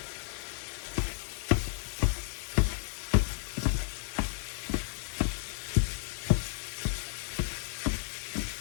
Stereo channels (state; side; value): silent; right; digital silence